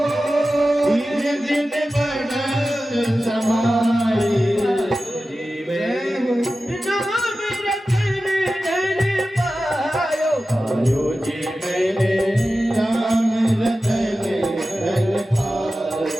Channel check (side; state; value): both; normal; correlation 0.94